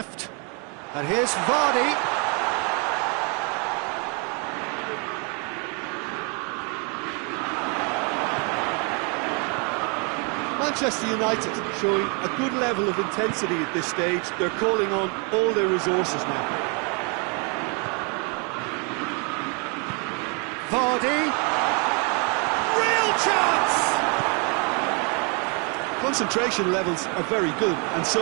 And here's Vardy. Manchester United showing a good level of intensity at this stage. They're calling on all their resources now. Vardy. Real chance! Concentration levels are very good, and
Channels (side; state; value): left; quieter; 34.6 dB